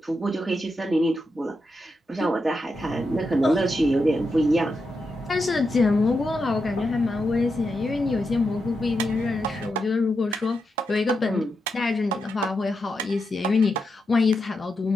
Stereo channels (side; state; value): both; normal; correlation 0.86